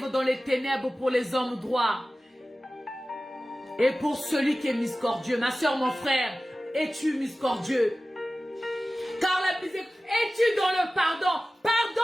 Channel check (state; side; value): normal; both; correlation 0.96